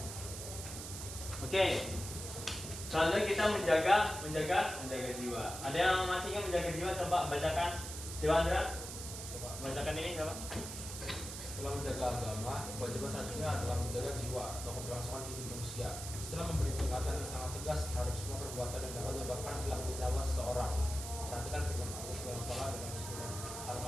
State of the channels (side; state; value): right; noise; hiss, 8 dB below the sound